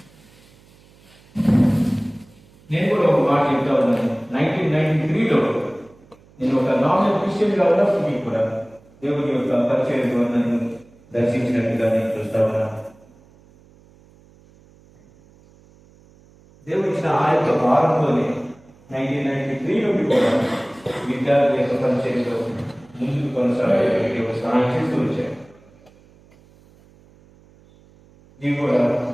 నేను కూడా ఒక మాట చెప్తా ఉన్నాను. 1993లో నేను ఒక నామినల్ క్రిస్టియన్గా ఉన్నప్పటికీ కూడా దేవుని యొక్క పరిచయం నన్ను దర్శించినట్టుగా నేను చూస్తా ఉన్నాను. దేవుడు ఇచ్చిన ఆ యొక్క భారంతోనే 1993 నుండి కూడా విద్యార్థి యొక్క పరిచయంలో ముందుకు కొనసాగడానికి ఒక సహాయం చేస్తూ వచ్చాను. నీవు కూడా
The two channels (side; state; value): right; noise; hum, 28 dB below the sound